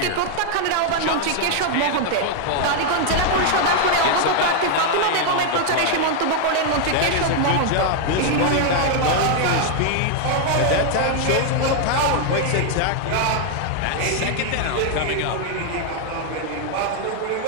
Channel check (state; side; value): different; both; correlation 0.00